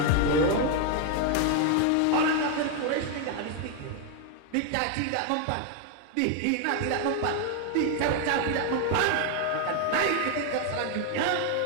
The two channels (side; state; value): both; different; correlation 0.01